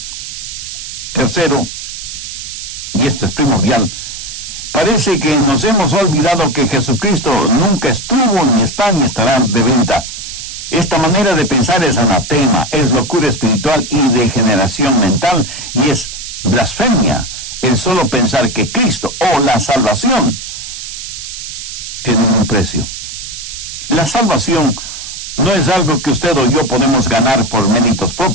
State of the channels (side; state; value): right; noise; hiss, 9 dB below the sound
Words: Tercero, y esto es primordial, parece que nos hemos olvidado que Jesucristo nunca estuvo, ni está, ni estará de venta. Esta manera de pensar es anatema, es locura espiritual y degeneración mental, y es blasfemia el solo pensar que Cristo o la salvación tienen un precio. La salvación no es algo que usted o yo podemos ganar por méritos